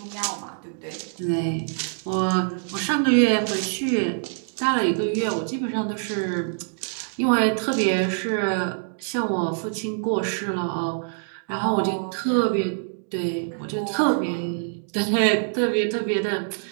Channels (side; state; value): left; silent; digital silence